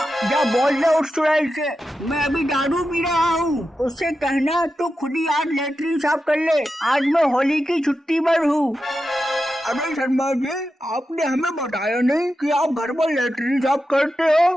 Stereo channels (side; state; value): both; normal; correlation 0.90